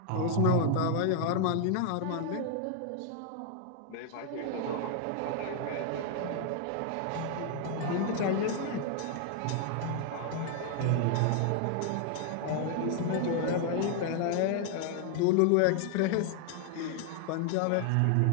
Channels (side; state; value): both; different; correlation 0.00